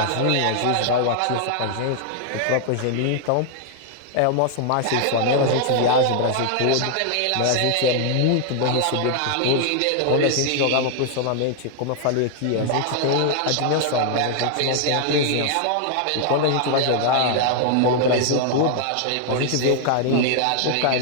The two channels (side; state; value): both; different; correlation 0.00